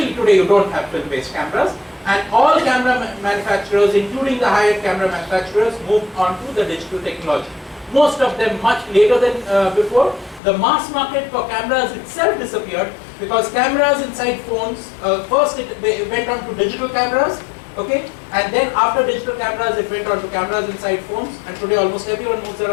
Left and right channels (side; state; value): right; drops out; at 10.4 s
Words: today you don't have film-based cameras, and all camera manufacturers, including the high-end camera manufacturers, moved on to the digital technology. Most of them much later than before. The mass market for cameras itself disappeared because cameras inside phones, first it went on to digital cameras, okay, and then after digital cameras it went on to cameras inside phones, and today almost everyone moves